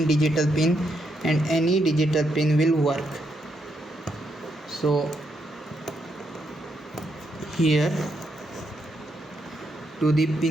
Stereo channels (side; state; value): both; normal; correlation 0.79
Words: digital pin and any digital pin will work. So here to the